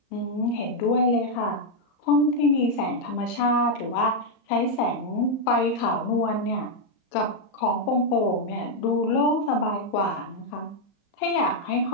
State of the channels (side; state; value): right; late; 36 ms